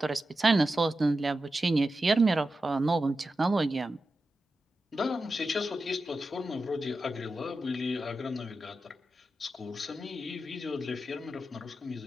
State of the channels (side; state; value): both; normal; correlation 0.91